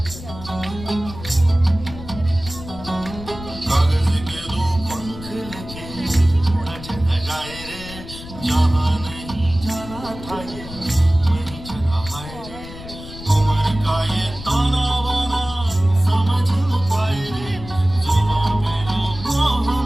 कागज के दो पंख लेके उड़ा चला जाए रे, जहाँ नहीं जाना था ये वहीं चला हाय रे। उम्र का ये ताना बाना समझ न पाए रे, जुबां पे जो मोह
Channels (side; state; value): left; noise; rumble, 13 dB below the sound